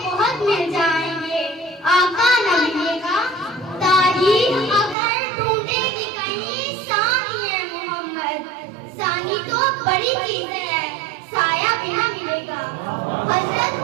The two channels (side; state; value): left; drops out; at 5.0 s